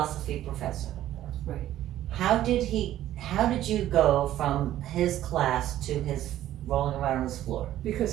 professor. Right. How did you go from his class to his rolling around on his floor? Because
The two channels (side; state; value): left; quieter; 13.0 dB